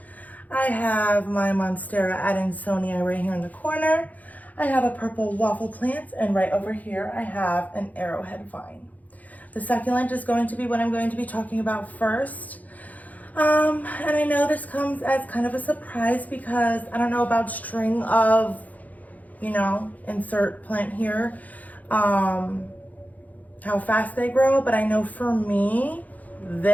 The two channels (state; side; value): late; right; 0.078 ms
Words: I have my Monstera Adansonia right here in the corner, I have a purple waffle plant, and right over here I have an arrowhead vine. The succulent is going to be what I'm going to be talking about first. And I know this comes as kind of a surprise because I don't know about string of, insert plant here, how fast they grow, but I know for me,